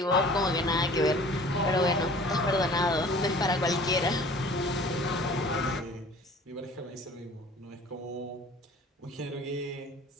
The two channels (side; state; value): both; normal; correlation 0.47